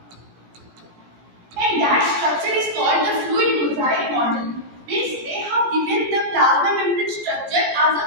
And that structure is called the fluid mosaic model. Means they have given the plasma membrane structure as a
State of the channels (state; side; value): late; left; 17 ms